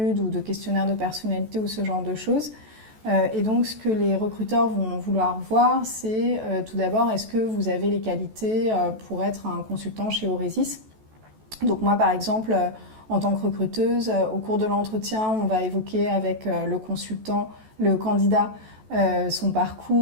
ou de questionnaires de personnalité ou ce genre de choses. Et donc ce que les recruteurs vont vouloir voir, c'est tout d'abord, est-ce que vous avez les qualités pour être un consultant chez Aurezis? Donc moi par exemple... En tant que recruteuse, au cours de l'entretien, on va évoquer avec le candidat, son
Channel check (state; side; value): late; left; 14 ms